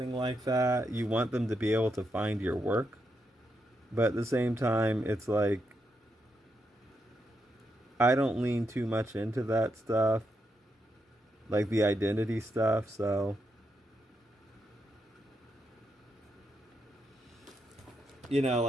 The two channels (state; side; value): normal; both; correlation 0.82